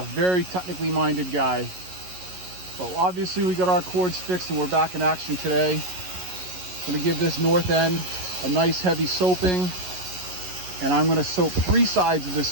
Very technically minded guy. But obviously we got our cords fixed and we're back in action today. I'm gonna give this north end a nice heavy soaping, and I'm gonna soap 3 sides of this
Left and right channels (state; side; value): late; left; 11 ms